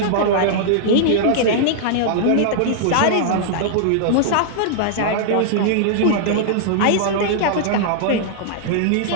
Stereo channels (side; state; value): both; different; correlation -0.01